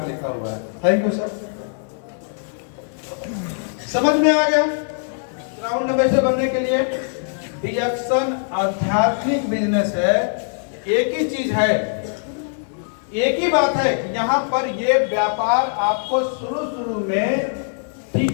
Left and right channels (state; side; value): silent; right; digital silence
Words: लिखा हुआ है। थैंक यू सर, समझ में आ गया। क्राउन एम्बेसडर बनने के लिए रिएक्शन आध्यात्मिक बिजनेस है। एक ही चीज है, एक ही बात है कि यहाँ पर ये व्यापार आपको शुरू में